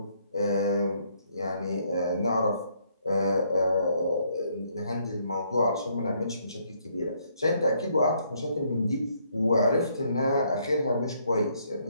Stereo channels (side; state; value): both; inverted; correlation -0.69